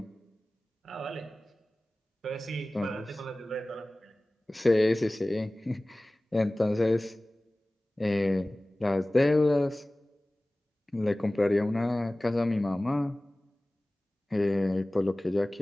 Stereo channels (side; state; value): both; normal; correlation 0.98